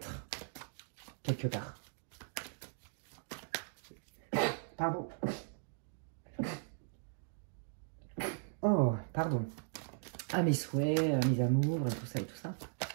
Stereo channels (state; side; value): silent; left; digital silence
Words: quelque part. Pardon. Oh, pardon. À mes souhaits, à mes amours, et tout ça et tout ça.